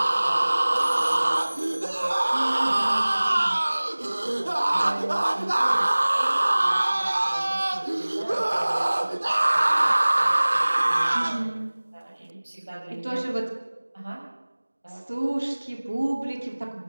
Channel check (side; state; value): both; inverted; correlation -1.00